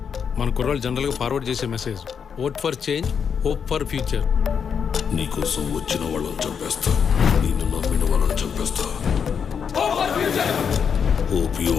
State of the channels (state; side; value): quieter; right; 6.9 dB